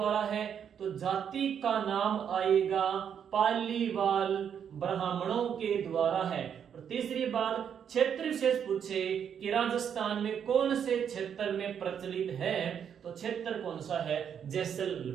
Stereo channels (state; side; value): quieter; left; 8.2 dB